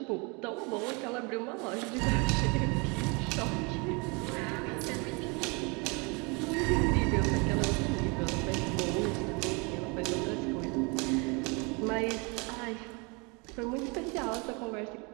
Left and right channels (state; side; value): quieter; left; 30.5 dB